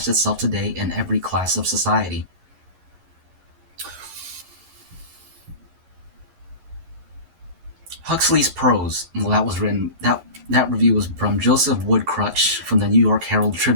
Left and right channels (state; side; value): late; left; 11 ms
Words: itself today in every class of society. Huxley's prose, well, that review was from Joseph Woodcrutch from the New York Herald